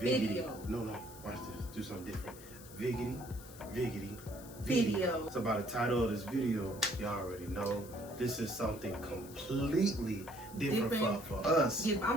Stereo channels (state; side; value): noise; left; hiss, 18 dB below the sound